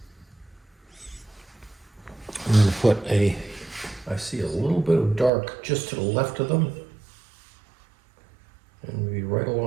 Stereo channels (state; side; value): drops out; left; at 5.3 s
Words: I'm going to put I see a little bit of dark just to the left of them. And maybe right